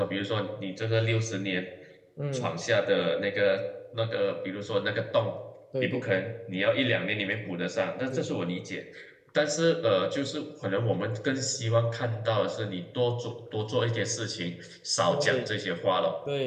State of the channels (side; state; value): both; identical; correlation 1.00